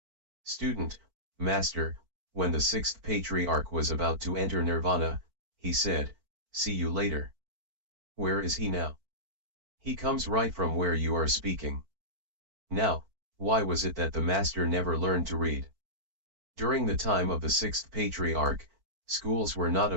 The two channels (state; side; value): late; left; 4.5 ms